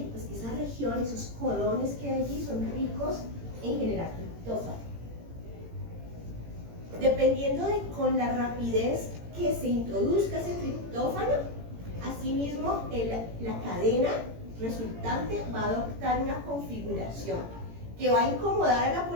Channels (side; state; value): left; late; 18 ms